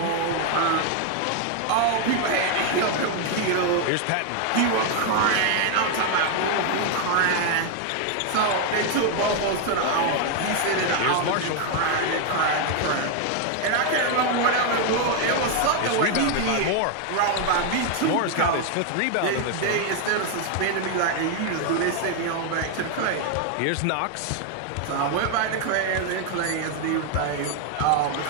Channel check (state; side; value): different; both; correlation 0.00